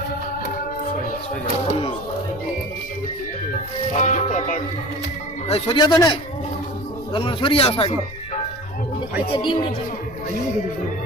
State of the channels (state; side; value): noise; left; rumble, 16 dB below the sound